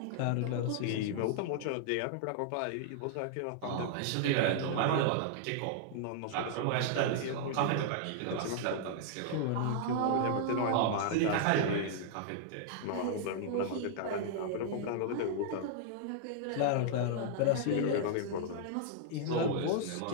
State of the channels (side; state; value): both; different; correlation -0.01